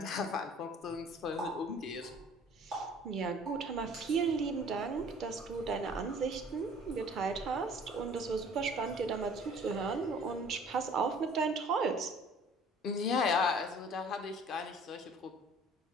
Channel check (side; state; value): both; normal; correlation 0.51